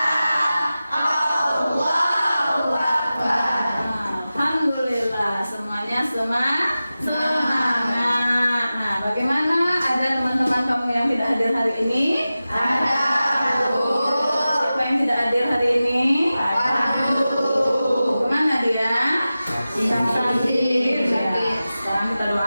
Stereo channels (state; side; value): inverted; both; correlation -0.95